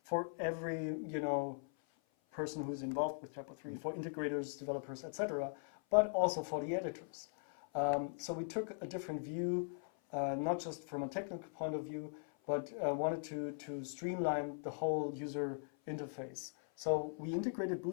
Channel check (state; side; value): silent; right; 51 dB below the other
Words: for every, person who's involved with TYPO3, for integrators, developers, etc., but also for the editors. So we took a different view, not just from a technical point of view, but wanted to streamline the whole user interface. So we integrated